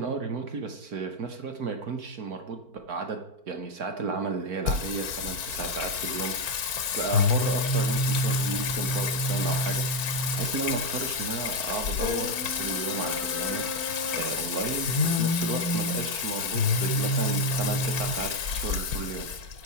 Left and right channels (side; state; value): left; late; 4.4 ms